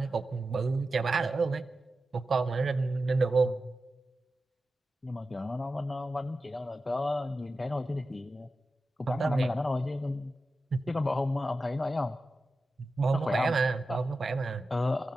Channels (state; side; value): normal; both; correlation 0.92